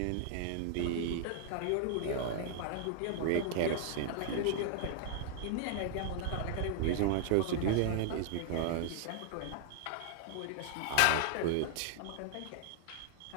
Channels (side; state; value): both; different; correlation -0.01